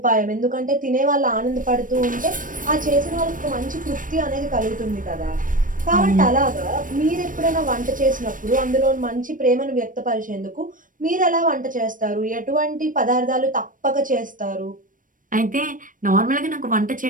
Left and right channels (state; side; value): late; left; 0.39 ms